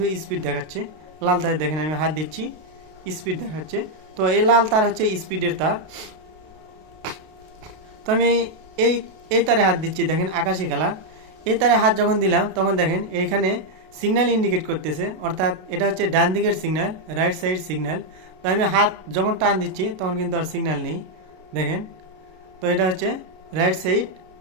স্পিড দেখাচ্ছে, লাল তারে দেখেন আমি হাত দিচ্ছি স্পিড দেখাচ্ছে। তো এই লাল তার হচ্ছে স্পিডের তার। তো আমি এই এই তারে হাত দিচ্ছি, দেখেন আকাশি কালার। এই তারে হাত যখন দিলাম তখন দেখেন এইখানে সিগন্যাল ইন্ডিকেট করতেছে, অর্থাৎ এটা হচ্ছে ডান দিকের সিগন্যাল, রাইট সাইড সিগন্যাল। তো আমি হাত যখন টান দিচ্ছি তখন কিন্তু আর সিগন্যাল নেই, দেখেন। তো এটা হচ্ছে রাইট সাইড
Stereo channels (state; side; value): late; left; 32 ms